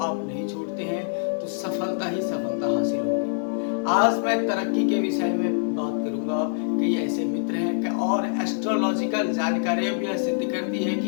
नहीं छोड़ते हैं तो सफलता ही सफलता हासिल होगी। आज मैं तरक्की के विषय में बात करूंगा। कई ऐसे मित्र हैं कि और एस्ट्रोलॉजिकल जानकारियां भी यह सिद्ध करती है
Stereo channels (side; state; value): right; silent; 62 dB below the other